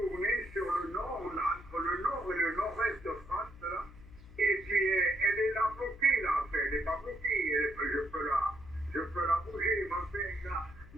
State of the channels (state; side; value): noise; left; hum, 19 dB below the sound